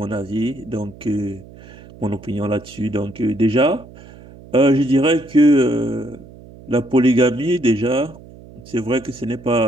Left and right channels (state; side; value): noise; right; hum, 20 dB below the sound